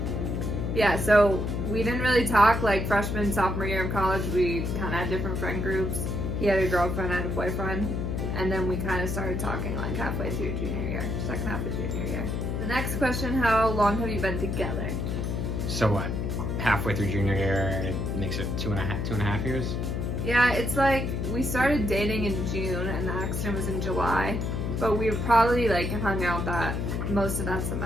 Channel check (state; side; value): noise; left; hum, 1 dB below the sound